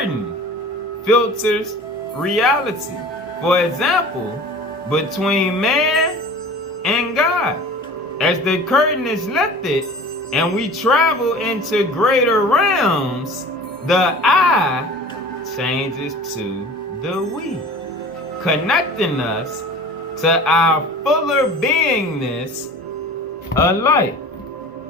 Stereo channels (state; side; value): normal; both; correlation 0.41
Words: filters reality. For example, between man and God. As the curtain is lifted and we travel into greater realms, the I changes to the we, connecting us to our fuller beingness of light.